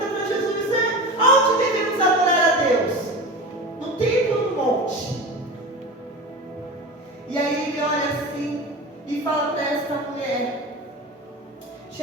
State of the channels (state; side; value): normal; both; correlation 0.29